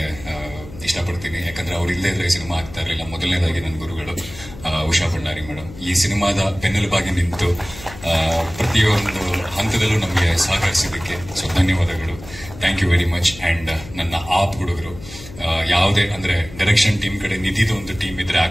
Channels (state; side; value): noise; left; hum, 16 dB below the sound